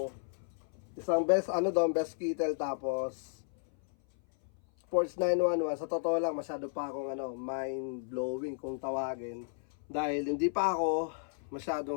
isang best, best kettle, tapos Porch 911. Sa totoo lang, masyado pa akong mind-blowing kung tawagin. Dahil hindi pa ako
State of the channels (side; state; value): right; silent; 56 dB below the other